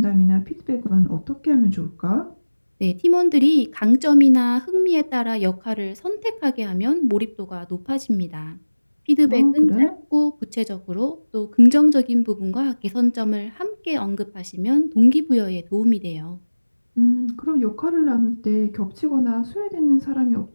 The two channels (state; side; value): inverted; both; correlation -1.00